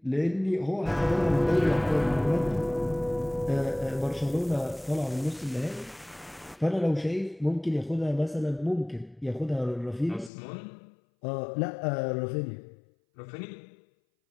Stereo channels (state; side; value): drops out; right; at 10.3 s